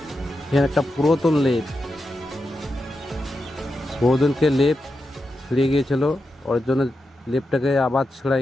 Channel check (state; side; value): normal; both; correlation 0.88